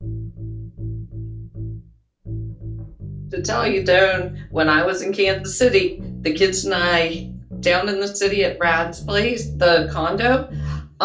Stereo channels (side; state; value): both; identical; correlation 1.00